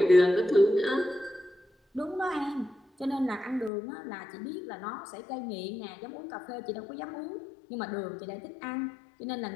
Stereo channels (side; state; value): right; drops out; at 3.7 s